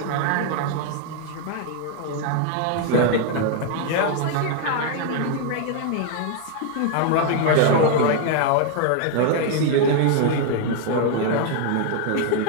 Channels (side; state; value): both; different; correlation 0.00